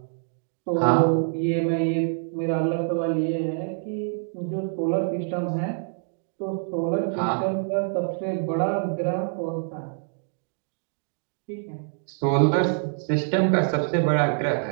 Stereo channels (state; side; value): silent; left; digital silence